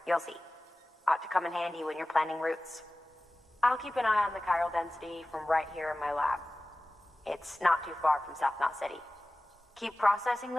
You'll see. Ought to come in handy when you're planning routes. I'll keep an eye on the chiral density from right here in my lab. It's not too far from South Knot City. Keep processing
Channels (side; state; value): both; normal; correlation 0.97